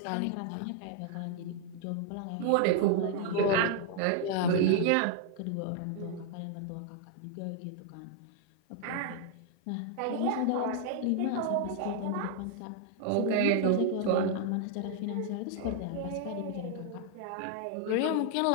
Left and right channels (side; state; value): both; different; correlation 0.00